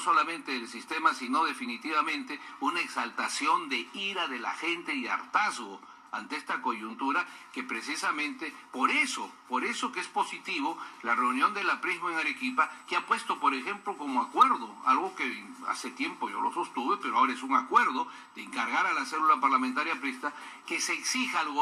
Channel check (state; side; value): identical; both; correlation 1.00